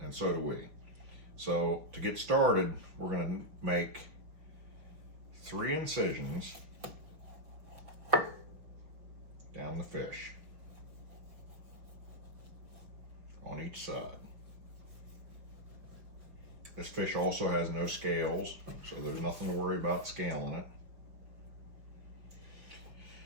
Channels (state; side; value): late; left; 5.6 ms